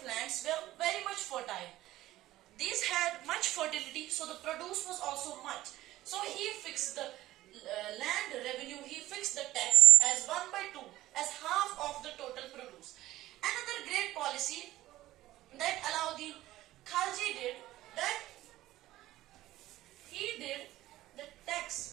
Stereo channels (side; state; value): left; quieter; 15.6 dB